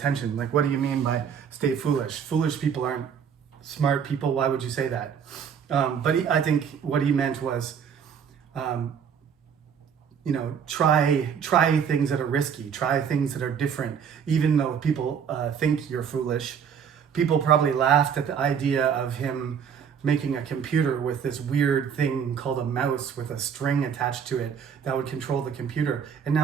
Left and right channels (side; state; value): left; quieter; 7.5 dB